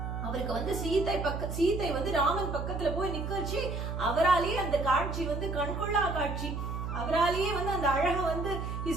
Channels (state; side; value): noise; right; hum, 4 dB below the sound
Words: அவருக்கு வந்து சீதை வந்து ராமன் பக்கத்துல போய் நிக்கச்சு. அவராலேயே அந்த காட்சி வந்து கண்கொள்ளா காட்சி. அவராலேயே வந்து அந்த அழக வந்து he